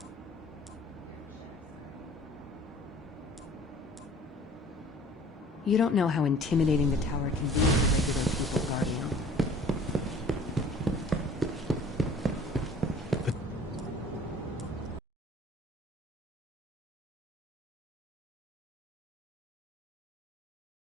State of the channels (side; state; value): both; normal; correlation 0.50